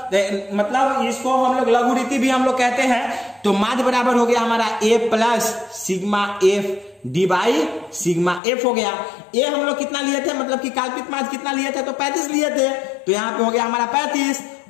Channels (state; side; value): drops out; right; at 8.4 s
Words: मतलब इसको हम लोग लघुरीति भी हम लोग कहते हैं। तो माध्य बराबर हो गया हमारा A plus sigma F D by sigma F हो गया। ए हम लोग कितना लिए थे, मतलब कि कल्पित माध्य कितना लिए थे, तो 35 लिए थे, तो यहाँ पे हो गया हमारा 35,